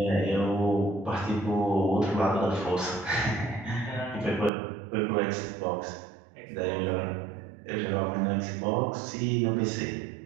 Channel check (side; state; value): left; drops out; at 4.5 s